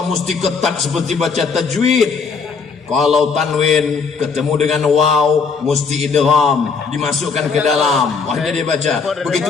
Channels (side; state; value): right; quieter; 5.2 dB